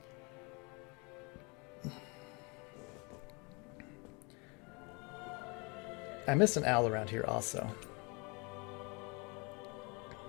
I missed an owl around here also.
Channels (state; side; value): quieter; right; 30.3 dB